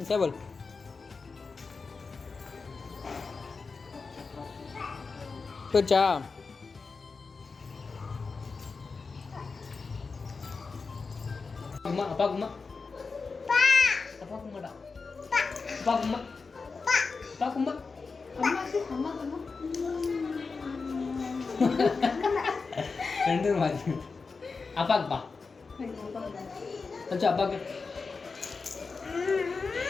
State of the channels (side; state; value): right; quieter; 4.5 dB